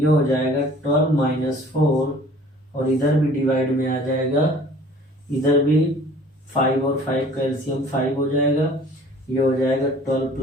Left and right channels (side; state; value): both; normal; correlation 0.50